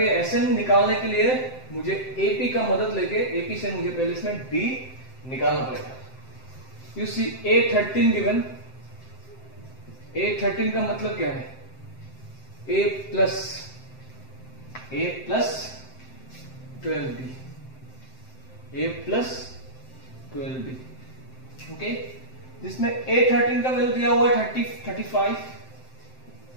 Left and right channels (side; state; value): right; late; 7.7 ms